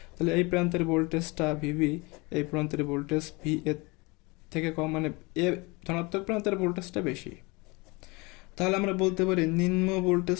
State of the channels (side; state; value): right; quieter; 26.1 dB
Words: তাহলে এই প্রান্তের ভোল্টেজটা ভিভি, এই প্রান্তের ভোল্টেজ ভি এর থেকে কম, মানে এ ধনাত্মক প্রান্তের ভোল্টেজটা বেশি। তাহলে আমরা বলতে পারি নিম্ন